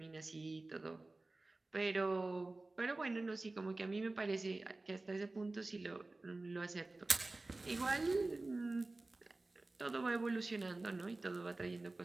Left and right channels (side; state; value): left; quieter; 3.1 dB